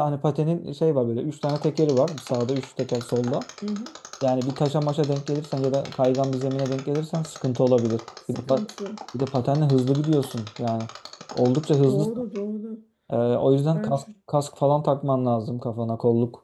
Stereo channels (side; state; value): both; identical; correlation 1.00